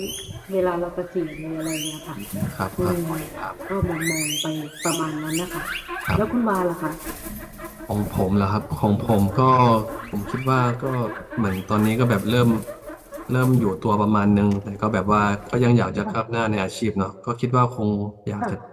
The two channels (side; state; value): both; identical; correlation 1.00